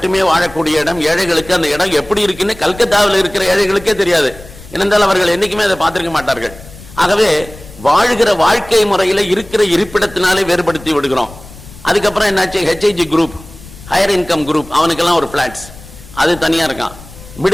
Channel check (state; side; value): noise; left; rumble, 19 dB below the sound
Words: வாழக்கூடிய இடம். ஏழைகளுக்கு அந்த இடம் எப்படி இருக்குன்னு கல்கத்தாவில் இருக்கிற ஏழைகளுக்கே தெரியாது. ஏனென்றால் அவர்கள் என்னைக்குமே அதை பார்த்திருக்க மாட்டார்கள். ஆகவே வாழ்கிற வாழ்க்கை முறையில இருக்கிற இருப்பிடத்தினாலே வேறுபடுத்தி விடுகிறோம். அதுக்கப்புறம் என்னாச்சு? HIG group, higher income group, அவனுக்கெல்லாம் ஒரு பிளாட்ஸ், அது தனியா இருக்கான்.